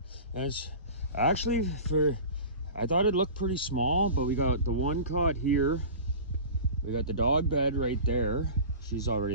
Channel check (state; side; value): inverted; both; correlation -0.36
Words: As actually, I thought it looked pretty small, but we got the one cot here. We got the dog bed right there. She's already